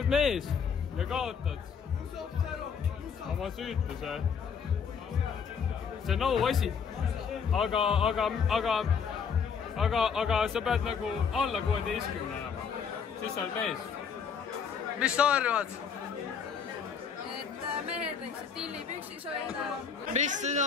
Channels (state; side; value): quieter; right; 6.6 dB